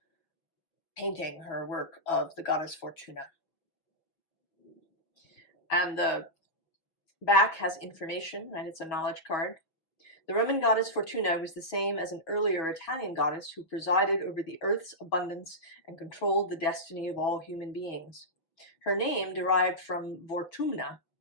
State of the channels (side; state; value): right; late; 6.2 ms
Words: painting, her work of the goddess Fortuna. And the back has information, and it's a knowledge card. The Roman goddess Fortuna was the same as an earlier Italian goddess who presided over the earth's abundance and controlled the destiny of all human beings. Her name, derived from Vortumna,